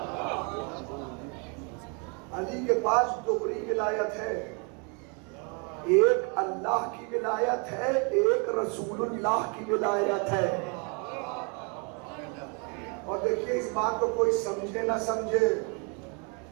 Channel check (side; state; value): left; quieter; 35.0 dB